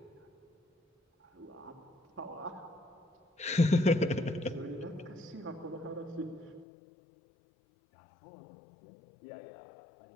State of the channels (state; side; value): drops out; right; at 6.7 s